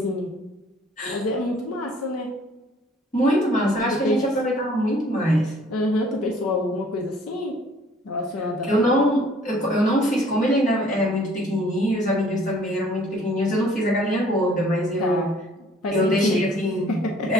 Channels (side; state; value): both; normal; correlation 0.57